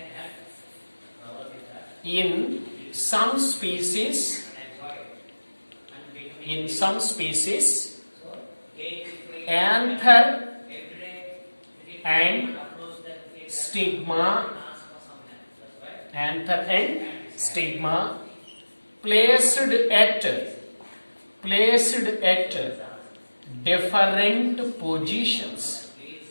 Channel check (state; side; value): inverted; both; correlation -1.00